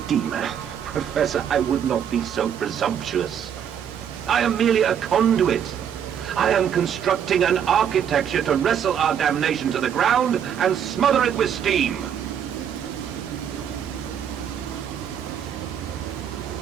Professor, I would not be so presumptuous. I am merely a conduit. I am constructing an architecture to wrestle our damnation to the ground and smother it with steam.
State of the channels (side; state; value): left; quieter; 8.6 dB